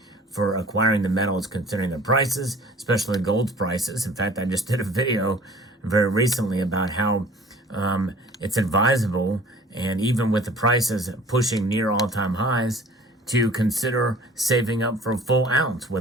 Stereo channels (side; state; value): both; normal; correlation 0.48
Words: for acquiring the metals considering the prices, especially gold's prices. In fact, I just did a video very recently about how it's advisable, and even with the prices pushing near all-time highs, to consider saving up for a full ounce,